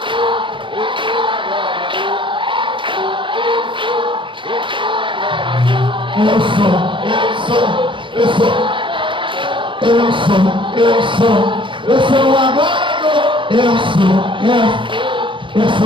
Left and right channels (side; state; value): left; late; 0.24 ms